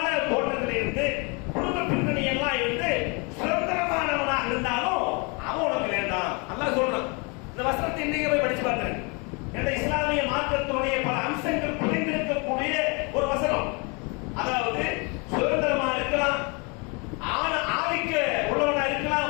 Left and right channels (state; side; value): quieter; right; 31.7 dB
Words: தோட்டத்தில் இருந்து குடும்ப பின்னணி எல்லாம் இருந்து சுதந்திரமானவனாக இருந்தாலும் அவன் உனக்கு வேண்டாம். அல்லாஹ் சொல்றான். இந்த வசனத்தை இன்னைக்கு போய் படிச்சு பார்க்கிறேன். இந்த இஸ்லாமிய மார்க்கத்தினுடைய பல அம்சங்கள் புரிந்திருக்கக்கூடிய ஒரு வசனம். அதாவது சுதந்திரமா இருக்கலாம், ஆதிக்க உள்ளவனா இருக்கலாம்,